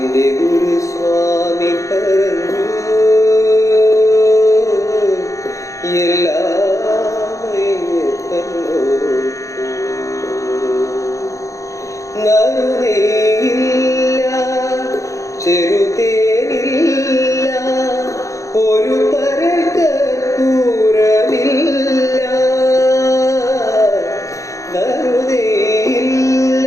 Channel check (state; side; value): late; right; 0.15 ms